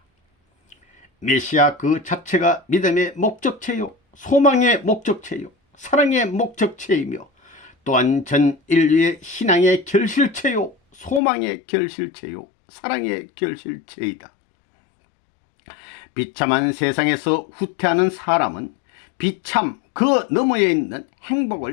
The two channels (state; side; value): drops out; right; at 11.2 s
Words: 메시아 그 자체가 믿음의 목적체요, 소망의 목적체요, 사랑의 목적체이며 또한 전 인류의 신앙의 결실체요, 소망의 결실체요, 사랑의 결실체이다. 비참한 세상에서 후퇴하는 사람은 비참 그 너머에 있는